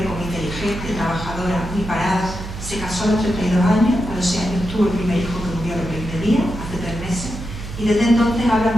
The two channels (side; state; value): right; noise; hum, 9 dB below the sound